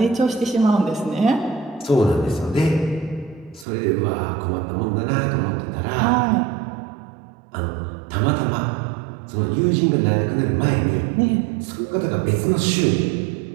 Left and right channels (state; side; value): drops out; left; at 3.7 s